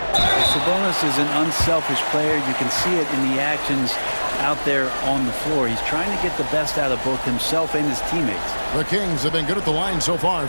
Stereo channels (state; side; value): inverted; both; correlation -1.00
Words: Sabonis is an unselfish player. You can see it in the actions out there on the floor. He's trying to get the best out of both himself and his teammates. The Kings have been good at the line so far,